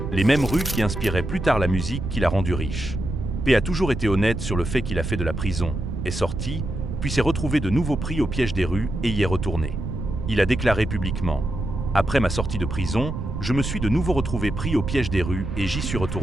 les mêmes rues qui inspiraient plus tard la musique qui l'a rendu riche. P a toujours été honnête sur le fait qu'il a fait de la prison, est sorti, puis s'est retrouvé de nouveau pris au piège des rues et y est retourné. Il a déclaré publiquement « Après ma sortie de prison, je me suis de nouveau retrouvé pris au piège des rues et j'y suis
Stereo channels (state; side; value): noise; right; rumble, 5 dB below the sound